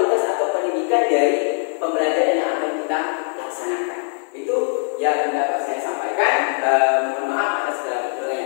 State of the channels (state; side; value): silent; right; 59 dB below the other